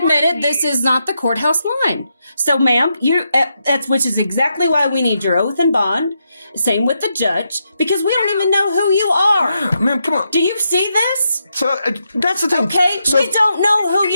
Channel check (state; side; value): inverted; both; correlation -0.83